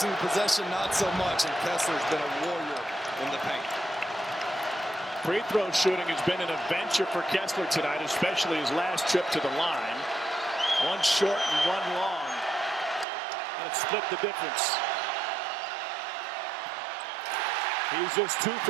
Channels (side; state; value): left; drops out; at 13.1 s